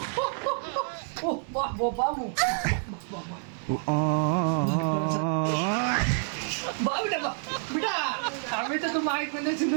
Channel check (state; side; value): silent; left; 59 dB below the other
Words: ও বাহ বাবু বেটা বেটা আমি তো তোমার কোনে